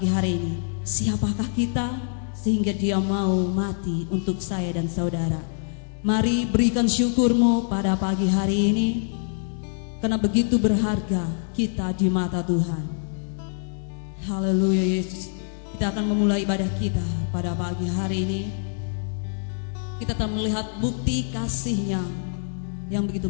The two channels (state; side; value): silent; right; digital silence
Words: hari ini, siapakah kita sehingga dia mau mati untuk saya dan saudara? Mari berikan syukurmu pada pagi hari ini, karena begitu berharga kita di mata Tuhan. Haleluya Yesus. Kita akan memulai ibadah kita pada pagi hari ini. Kita akan melihat bukti kasih-Nya yang